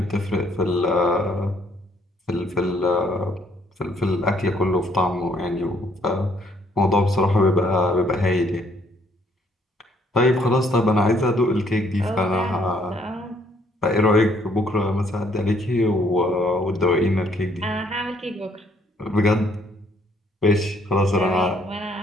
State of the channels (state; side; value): normal; both; correlation 0.66